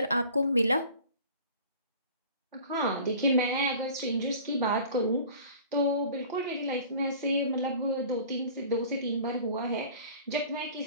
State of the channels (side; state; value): both; inverted; correlation -0.45